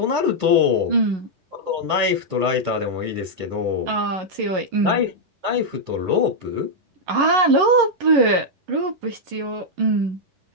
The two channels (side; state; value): left; late; 11 ms